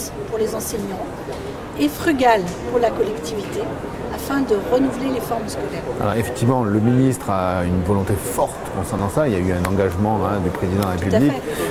pour les enseignants et frugales pour la collectivité, afin de renouveler les formes scolaires. Alors effectivement, le ministre a une volonté forte concernant ça. Il y a eu un engagement du président de la République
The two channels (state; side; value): identical; both; correlation 1.00